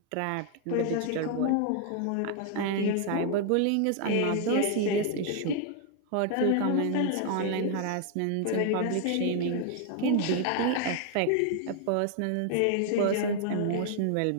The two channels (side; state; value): both; different; correlation 0.00